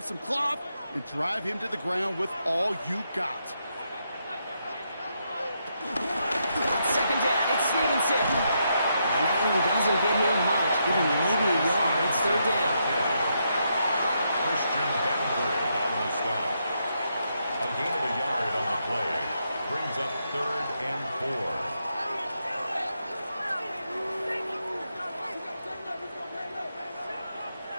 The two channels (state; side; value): inverted; both; correlation -0.80